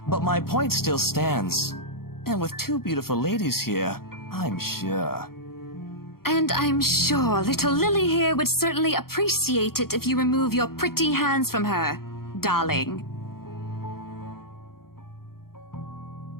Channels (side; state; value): right; late; 0.93 ms